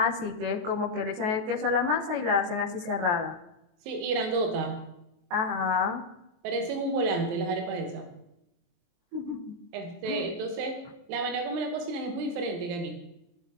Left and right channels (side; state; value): left; late; 23 ms